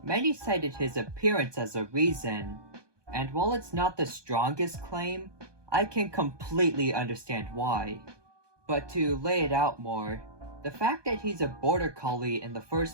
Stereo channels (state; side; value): late; left; 1.2 ms